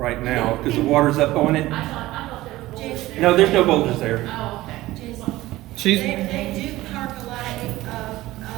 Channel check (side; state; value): left; quieter; 17.2 dB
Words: now because the water's up on it. I thought there was boulders there. No, there's no boulders there. Oh, okay. They do park a lot